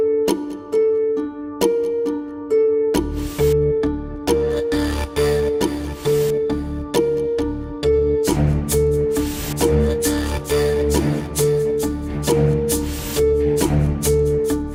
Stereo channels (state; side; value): identical; both; correlation 1.00